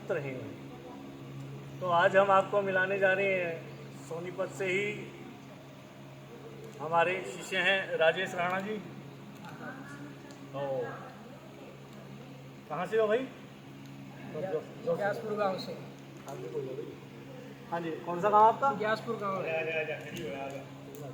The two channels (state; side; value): identical; both; correlation 1.00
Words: रहें। तो आज हम आपको मिलाने जा रहे हैं सोनीपत से ही हमारे शिष्य हैं राजेश राणा जी। तो कहाँ से हो भाई? ग्यासपुर गांव से। हाँ जी, कौन सा गांव आपका? ग्यासपुर गांव है।